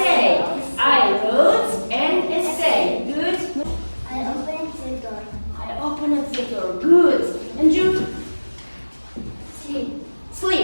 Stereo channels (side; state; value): both; inverted; correlation -1.00